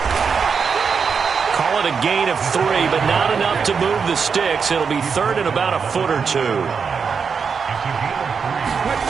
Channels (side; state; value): left; quieter; 5.9 dB